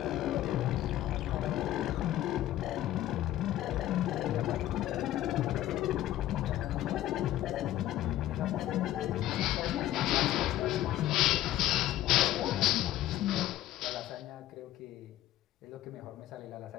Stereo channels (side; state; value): right; quieter; 13.8 dB